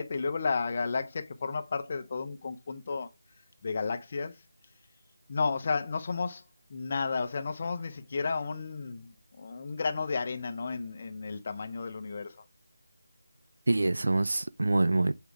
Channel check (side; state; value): both; inverted; correlation -0.92